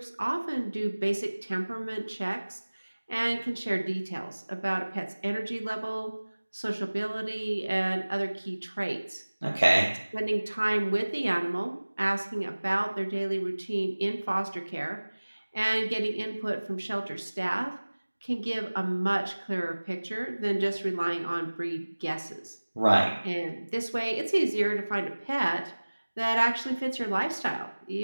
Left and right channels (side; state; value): both; inverted; correlation -1.00